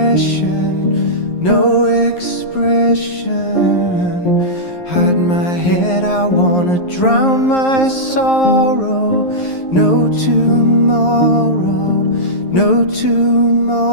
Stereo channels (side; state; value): right; late; 11 ms